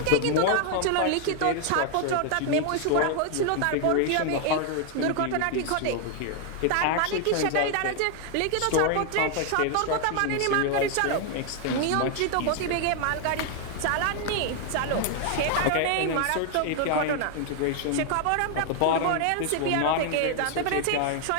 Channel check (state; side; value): different; both; correlation 0.00